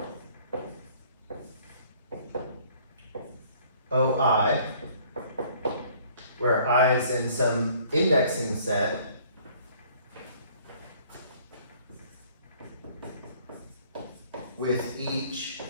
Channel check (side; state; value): both; inverted; correlation -0.57